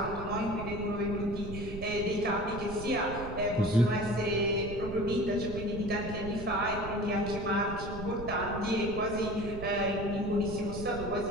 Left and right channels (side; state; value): right; noise; rumble, 9 dB below the sound